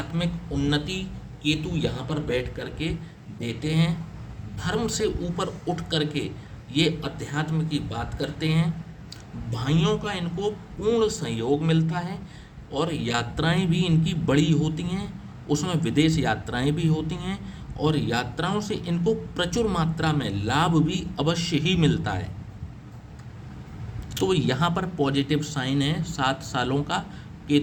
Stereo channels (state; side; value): identical; both; correlation 1.00